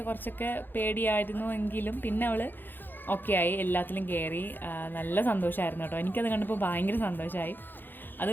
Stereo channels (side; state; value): right; late; 0.093 ms